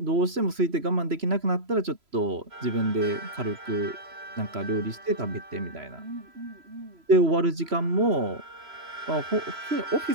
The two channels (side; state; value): left; late; 3.0 ms